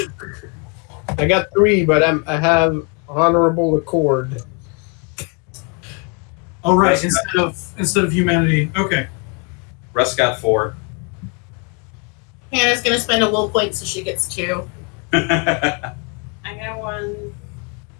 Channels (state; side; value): quieter; right; 34.9 dB